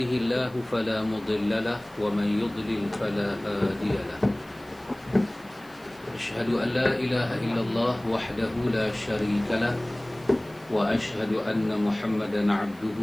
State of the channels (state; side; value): noise; right; hiss, 27 dB below the sound